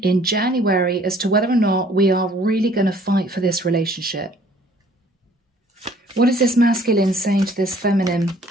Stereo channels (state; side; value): normal; both; correlation 0.57